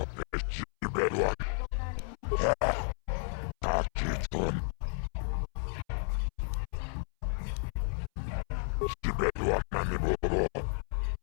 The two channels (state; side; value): silent; right; 56 dB below the other